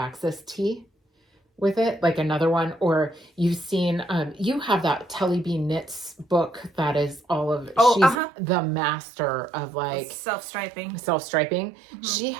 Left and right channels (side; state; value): left; drops out; at 8.2 s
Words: tee with it, like another one. Or you've seen, you have that Telly B Knits book that is all of, she's the master of like self-striping. Mm-hmm. She